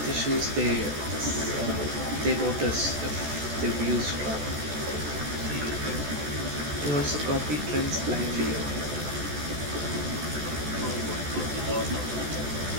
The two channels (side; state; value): left; late; 14 ms